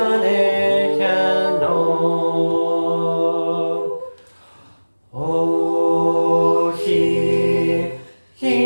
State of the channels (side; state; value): both; inverted; correlation -1.00